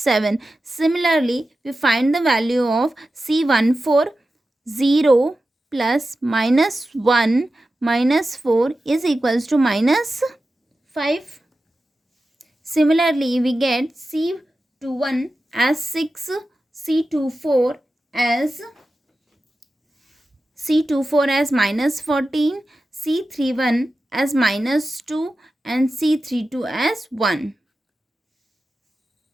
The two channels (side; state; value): both; normal; correlation 0.93